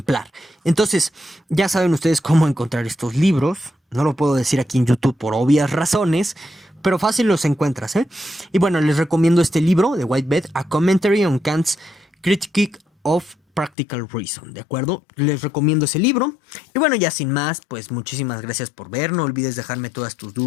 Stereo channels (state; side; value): drops out; right; at 13.7 s